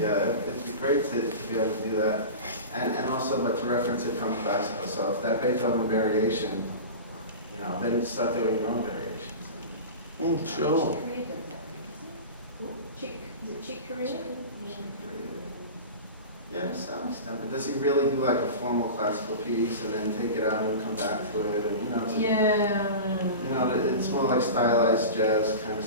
be great to be able to do that. And also, but to reference it from classical, so if that Beethoven variation, you know, then start doing your own variations. Sure. Chick Corea does that, isn't it? Chick, is it Chick Corea? Yeah, to some extent, but does he really do like a formal classical piece and then take it out and come back to it, and you know, it's, you know, it's more like stylized jazz kind of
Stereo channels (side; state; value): both; inverted; correlation -0.30